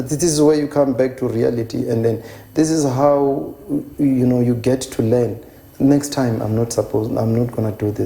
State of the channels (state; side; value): identical; both; correlation 1.00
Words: is where you come back to reality. And then this is how, you get to learn. Next time, I'm not going to do